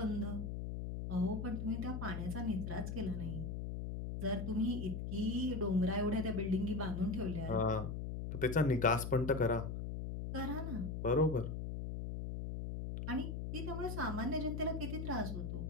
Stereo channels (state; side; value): noise; left; hum, 4 dB below the sound